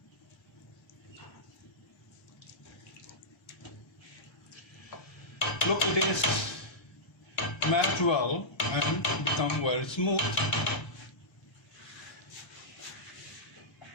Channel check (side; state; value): both; normal; correlation -0.12